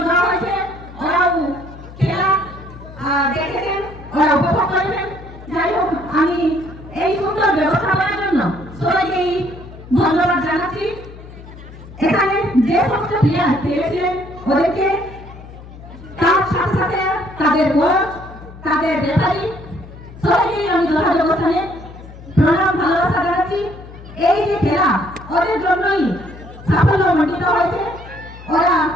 দেওয়া হয়েছে, ওরাও খেলা দেখেছেন, ওরা উপভোগ করেছেন। যাই হোক, আমি এই সুন্দর ব্যবস্থাপনার জন্য সবাইকেই ধন্যবাদ জানাচ্ছি। এখানে যে সমস্ত প্লেয়ার খেলেছিলেন ওদেরকে, তার সাথে সাথে তাদের কোচ, তাদের রেফারি, সবাইকেই আমি যথাযথ স্থানে প্রণাম ভালোবাসা জানাচ্ছি। এই যে খেলা ওদের জন্যই সাফল্য মণ্ডিত হয়েছে, ওরা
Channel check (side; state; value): left; noise; hum, 17 dB below the sound